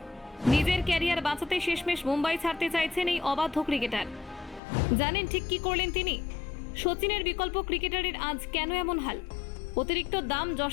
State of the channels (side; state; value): right; drops out; at 4.6 s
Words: নিজের ক্যারিয়ার বাঁচাতে শেষমেশ মুম্বাই ছাড়তে চাইছেন এই অবাধ্য ক্রিকেটার। জানেন ঠিক কি করলেন তিনি? সচিনের বিকল্প ক্রিকেটারের আজ কেন এমন হাল? অতিরিক্ত দাম